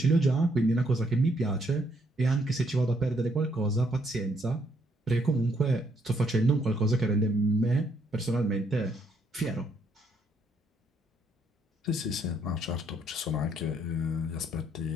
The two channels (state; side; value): normal; both; correlation 0.71